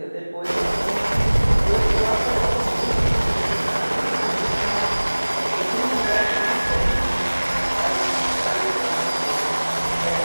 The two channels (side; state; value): both; inverted; correlation -1.00